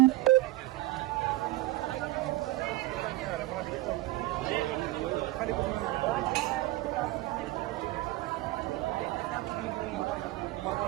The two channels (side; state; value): left; quieter; 17.8 dB